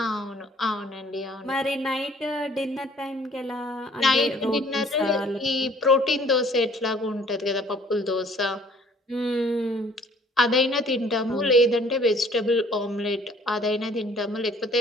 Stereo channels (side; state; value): both; normal; correlation 0.56